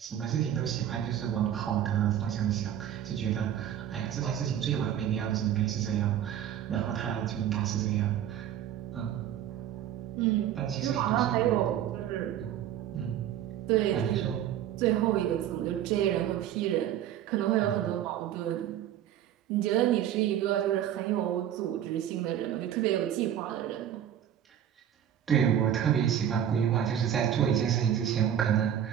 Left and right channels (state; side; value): quieter; left; 10.5 dB